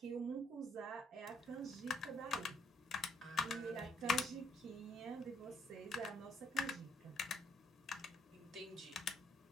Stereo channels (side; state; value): both; normal; correlation 0.69